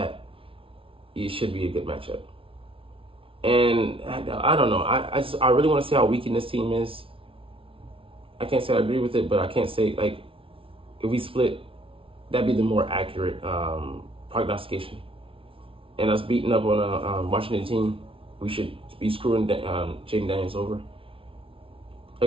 it should be a good matchup. And I don't know. I really want to see how weak this team is. I can't say I agree with it, but I can't say if we split, that'd be the more accurate prognostication. And us beating up on a Washington team, we should be screwing Jaden Daniels over.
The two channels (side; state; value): left; late; 0.26 ms